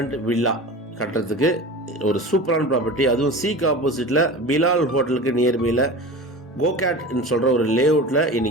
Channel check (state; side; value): normal; both; correlation 0.33